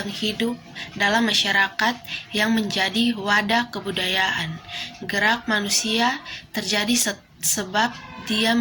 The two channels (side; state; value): both; identical; correlation 1.00